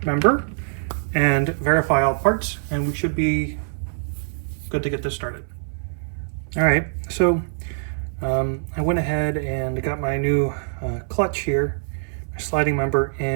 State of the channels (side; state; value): left; silent; 61 dB below the other